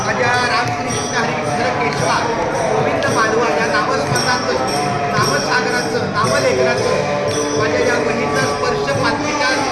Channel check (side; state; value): both; identical; correlation 1.00